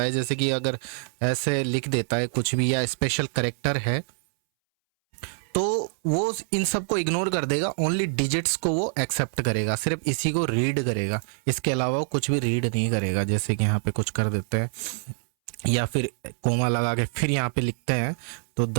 है, जैसे कि अगर ऐसे लिख देता है कुछ भी या स्पेशल करेक्टर है, तो वो इन सब को इग्नोर कर देगा। ओनली डिजिट्स को वो एक्सेप्ट करेगा, सिर्फ इसी को रीड करेगा, इसके अलावा वो कुछ भी रीड नहीं करेगा। जैसे कि यहाँ पे कुछ कर देते हैं या फिर कोमा लगा के फिर यहाँ पे लिखते हैं तो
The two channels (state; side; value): silent; left; 61 dB below the other